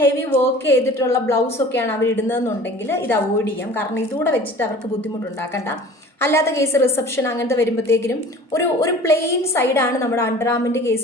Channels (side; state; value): both; normal; correlation 0.44